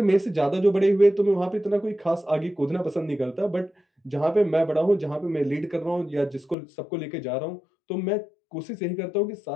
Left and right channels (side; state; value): right; drops out; at 6.6 s